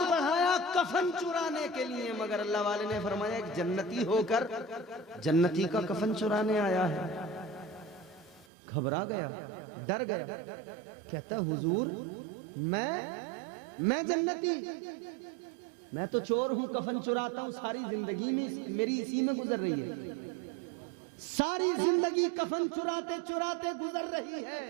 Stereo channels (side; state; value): left; drops out; at 8.5 s